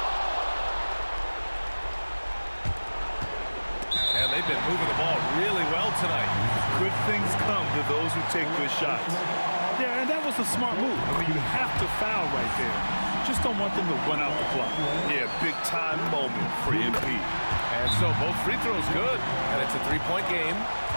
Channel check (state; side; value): inverted; both; correlation -1.00